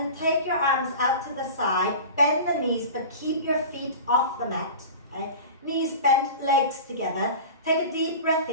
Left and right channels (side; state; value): both; inverted; correlation -0.34